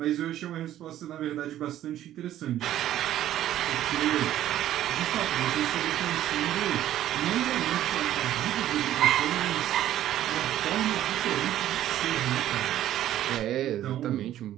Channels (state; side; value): quieter; left; 12.6 dB